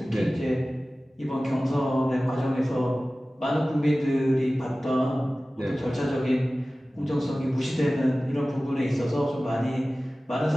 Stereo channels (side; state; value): both; normal; correlation 0.97